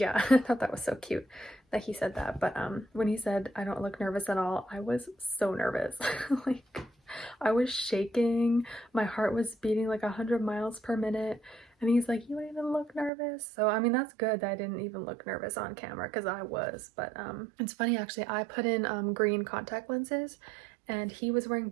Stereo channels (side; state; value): left; drops out; at 13.1 s